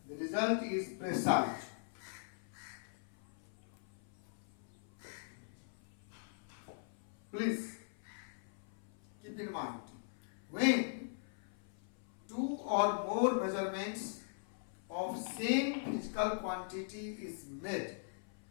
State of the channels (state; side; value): silent; right; 51 dB below the other